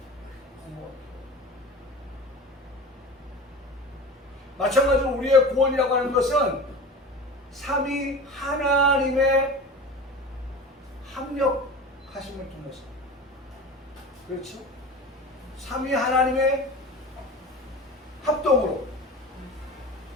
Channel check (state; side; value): normal; both; correlation 0.34